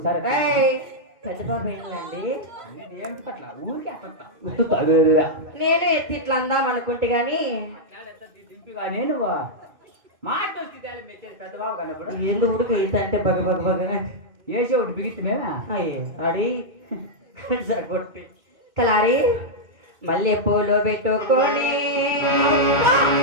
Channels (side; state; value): left; late; 2.2 ms